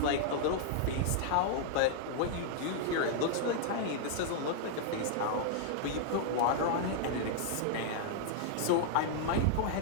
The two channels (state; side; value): different; both; correlation -0.01